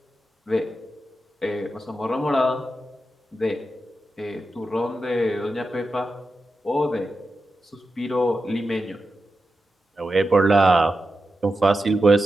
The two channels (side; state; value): both; normal; correlation 0.90